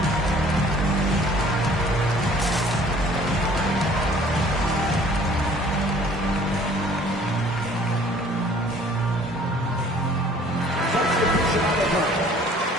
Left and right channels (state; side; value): normal; both; correlation 0.54